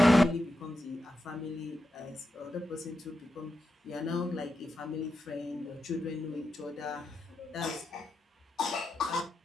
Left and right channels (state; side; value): normal; both; correlation 0.88